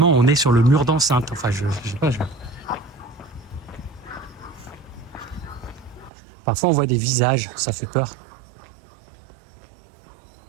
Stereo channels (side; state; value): left; drops out; at 6.1 s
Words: on est sur le mur d'enceinte. Enfin, je sais pas. Parfois on voit des visages, ça fait peur.